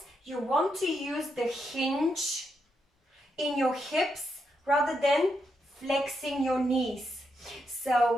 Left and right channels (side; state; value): both; normal; correlation 0.82